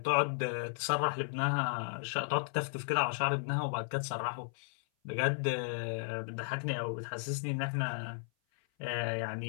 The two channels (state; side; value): silent; right; 55 dB below the other